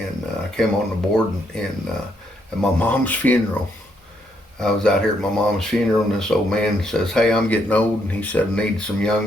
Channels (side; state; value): both; normal; correlation 0.75